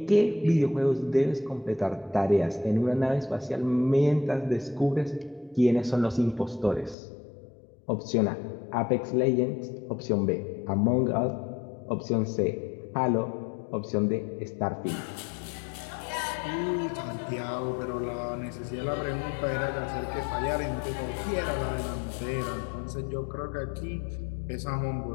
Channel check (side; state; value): right; drops out; at 7.0 s